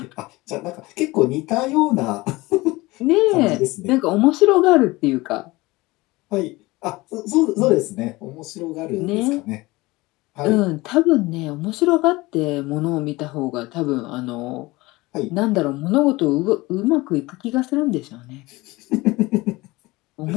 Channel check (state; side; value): quieter; right; 21.2 dB